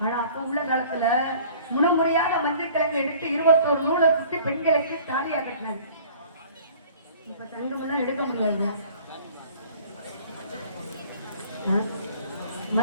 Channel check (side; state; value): both; inverted; correlation -0.50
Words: ஆனா அப்ப உள்ள காலத்துல முறையாக மஞ்சள் கிழங்கு எடுத்து 21 நூலை சுத்தி பெண்களுக்கு தாலியா கட்டினாங்க. இப்ப தங்கம் எல்லாம் எடுக்க முடியாது,